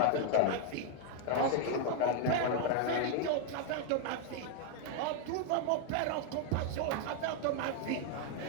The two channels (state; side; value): different; both; correlation 0.00